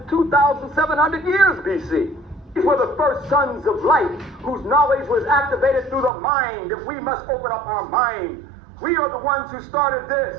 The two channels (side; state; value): left; drops out; at 6.1 s